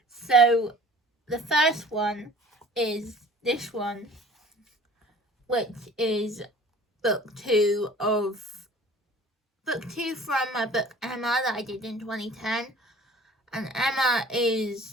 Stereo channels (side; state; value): both; normal; correlation 0.48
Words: So the first one is this one, which is book 2 from my book Emma that I did in 2010. And Emma